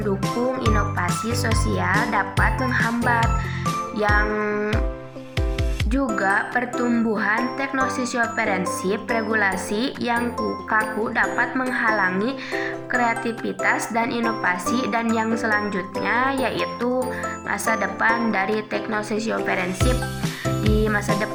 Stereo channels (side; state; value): both; identical; correlation 1.00